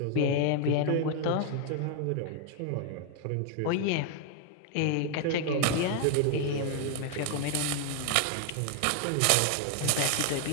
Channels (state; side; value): different; both; correlation 0.00